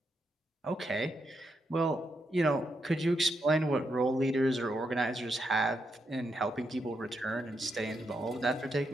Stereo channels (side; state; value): both; normal; correlation 0.82